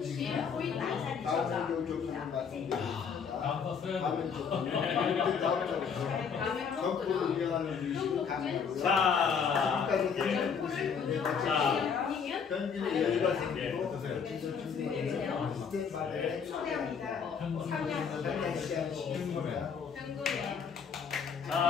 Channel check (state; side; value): quieter; right; 6.5 dB